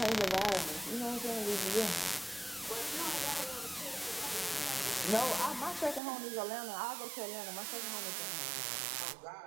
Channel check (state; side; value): drops out; left; at 6.0 s